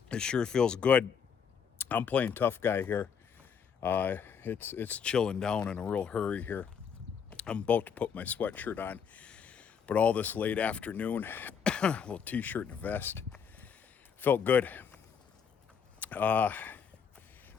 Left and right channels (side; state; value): right; quieter; 7.0 dB